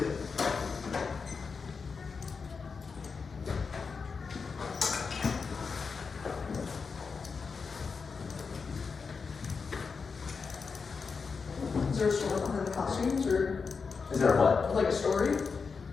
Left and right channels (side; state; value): right; quieter; 5.2 dB